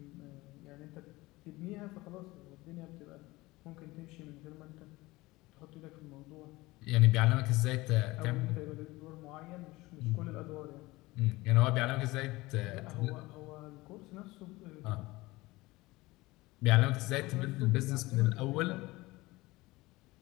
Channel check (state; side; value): quieter; right; 20.6 dB